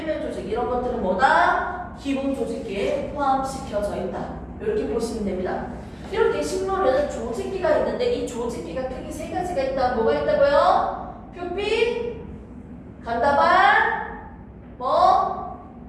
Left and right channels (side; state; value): both; identical; correlation 1.00